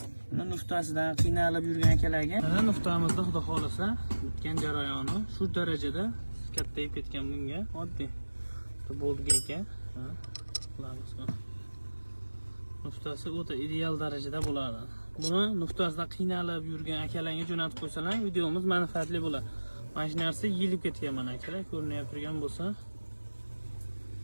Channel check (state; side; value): inverted; both; correlation -1.00